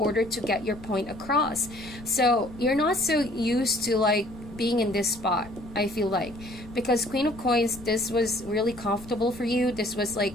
to get your point across. So you're not so used to like being in this spot, I feel like, because Queen of Coins, this was really comfortable for you. This was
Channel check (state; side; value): noise; left; rumble, 17 dB below the sound